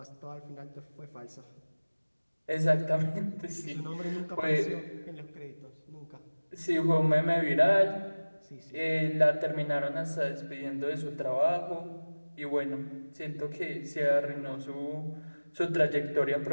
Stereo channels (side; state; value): both; inverted; correlation -1.00